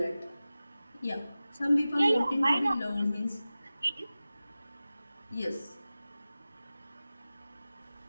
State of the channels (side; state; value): both; inverted; correlation -0.96